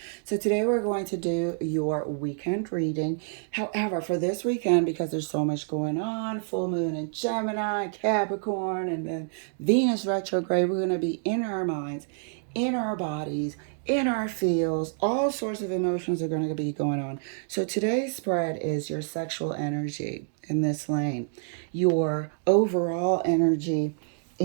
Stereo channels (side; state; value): left; silent; digital silence